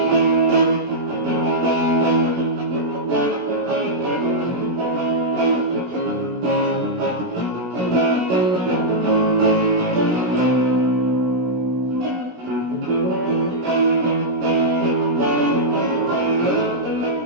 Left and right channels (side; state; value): left; late; 16 ms